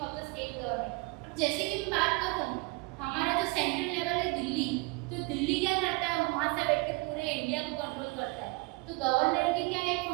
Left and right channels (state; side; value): quieter; left; 26.5 dB